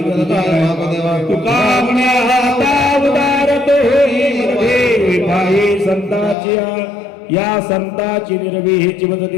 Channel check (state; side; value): drops out; right; at 6.4 s